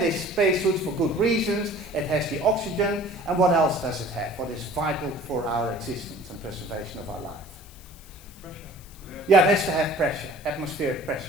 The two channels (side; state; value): left; noise; hiss, 22 dB below the sound